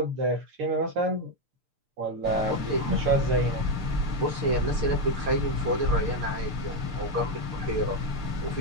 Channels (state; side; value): late; left; 6.7 ms